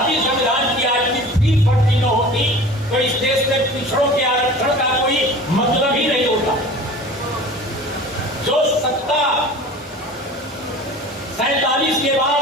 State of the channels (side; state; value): both; normal; correlation 0.40